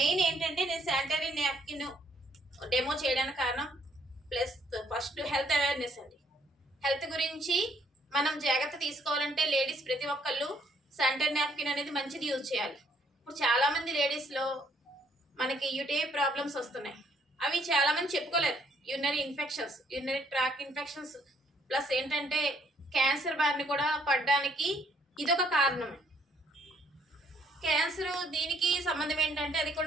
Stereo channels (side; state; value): both; normal; correlation 0.67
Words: ఏంటంటే నేను శానిటరీ నాప్కిన్ డెమో చేయడానికి కారణం ప్లస్ ఫస్ట్ హెల్త్ అవేర్నెస్ అండి. హెల్త్ గురించి మనం జాగ్రత్త తీసుకోవాలంటే లేడీస్ ప్రతి ఒక్కళ్ళు శానిటరీ నాప్కిన్ అనేది మంచిది యూజ్ చేయాలి. ఇప్పుడు చాలా మంది లేడీస్ లో మనకి యూటీఐ ప్రాబ్లమ్స్ వస్తున్నాయి. అవి చాలా మంది చెప్పుకోలేరు. Urinary infections, urinary tract infections plus ఏంటంటే క్యాన్సర్ బారిన కూడా పడడానికి ఇదొక కారణం. క్యాన్సర్ దీనికి సంబంధం ఏంటంటే అది